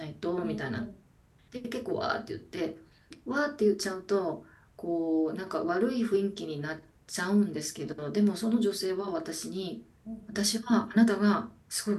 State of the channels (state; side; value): identical; both; correlation 1.00